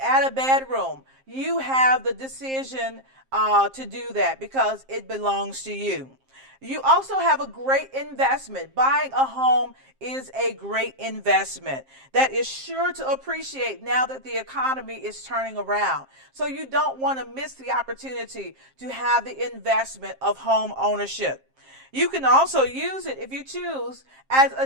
add a bedroom, you have the decision to do that because it belongs to you. You also have a great investment. Buying a home is a great investment that is sure to appreciate now that the economy is turning around. So you don't want to miss the opportunity to have the investment of home ownership. You can also use it, if you choose, as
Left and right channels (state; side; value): late; left; 7.6 ms